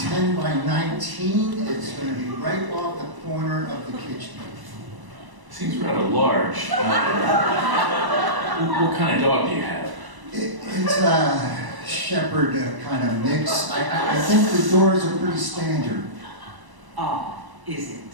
by 19. It's going to be right off the corner of the kitchen. Seems rather large. What kind of dog do you have? It's a shepherd kind of mix. I think the doors are pretty standard. Ah, is it?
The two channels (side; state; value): left; late; 1.0 ms